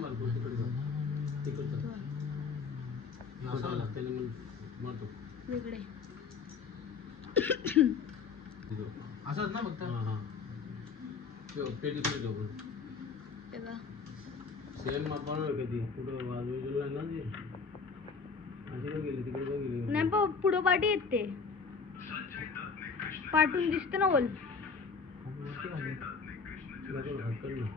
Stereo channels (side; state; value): right; quieter; 5.2 dB